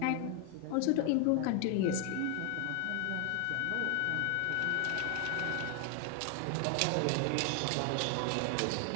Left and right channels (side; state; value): both; different; correlation 0.00